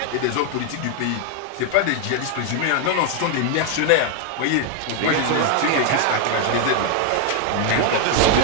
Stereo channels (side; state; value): both; different; correlation 0.00